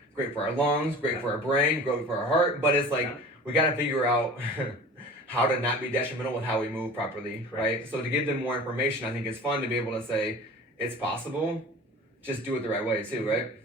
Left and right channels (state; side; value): normal; both; correlation 0.40